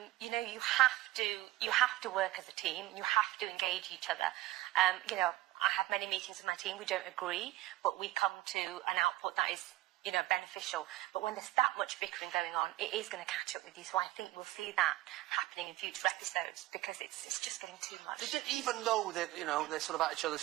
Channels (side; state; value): left; quieter; 16.9 dB